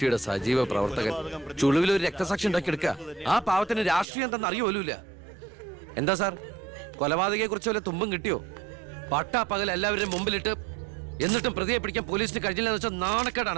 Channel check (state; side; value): drops out; left; at 4.0 s